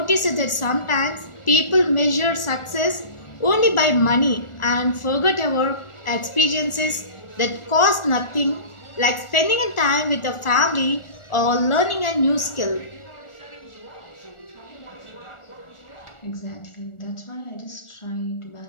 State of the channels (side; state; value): right; late; 1.4 ms